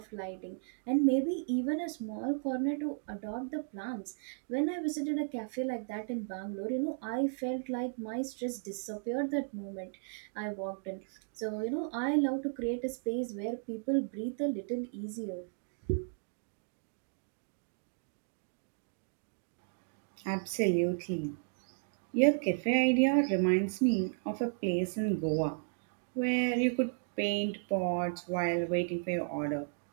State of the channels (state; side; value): silent; left; digital silence